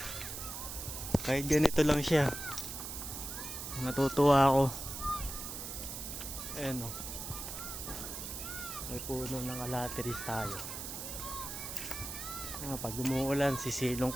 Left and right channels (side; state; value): right; noise; hiss, 7 dB below the sound